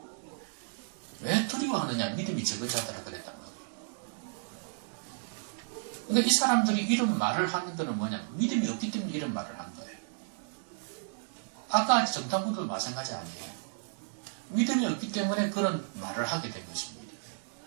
왜 두려워하느냐? 믿음이 적은 자들아 그랬단 말이에요. 그러니까 이 사람들이 이런 말을 하는 것은 뭐냐? 믿음이 없기 때문에 이런 말을 한 거예요. 아까 정탐꾼들도 마찬가지 아니에요. 믿음이 없기 때문에 그런 말을 하게 된 것입니다.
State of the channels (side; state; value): left; silent; digital silence